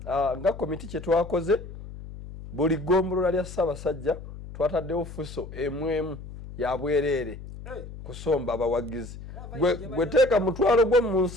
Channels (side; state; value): left; noise; hum, 13 dB below the sound